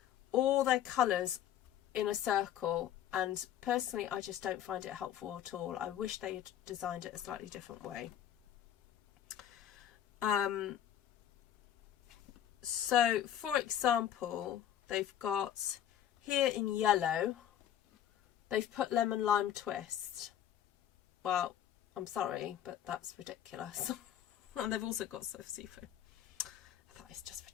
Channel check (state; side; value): quieter; right; 10.7 dB